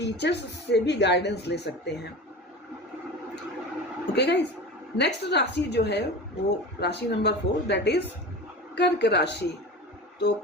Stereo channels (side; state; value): both; normal; correlation 0.32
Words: से भी गाइडेंस ले सकते हैं। ओके गाइस, नेक्स्ट राशि जो है वो राशि नंबर 4, दैट इज कर्क राशि। तो